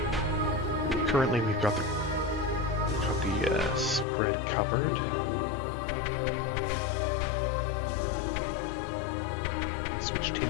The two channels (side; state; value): right; drops out; at 4.0 s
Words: Currently we've got the spread covered. Switched him